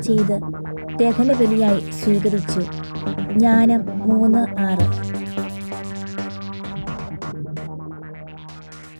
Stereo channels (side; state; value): both; inverted; correlation -1.00